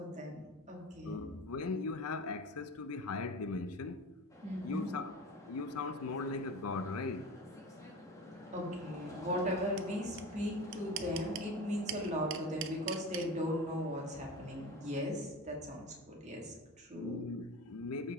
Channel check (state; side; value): normal; both; correlation 0.32